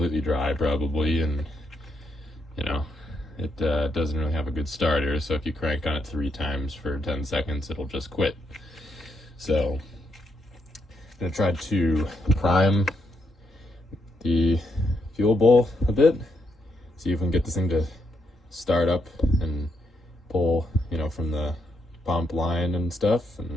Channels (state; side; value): normal; both; correlation 0.78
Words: dry probably, and you know, it doesn't really have a good starter, so if you crank on it 3 times for 10 seconds, it'll just quit. So I'm going to try to prime the fuel bowl a bit, see if we can get this thing to start up and pull, you know, from the pump line and stuff,